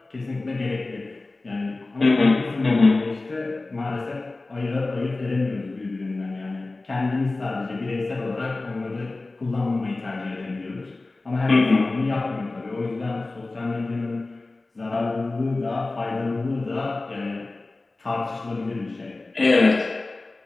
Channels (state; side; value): quieter; right; 3.2 dB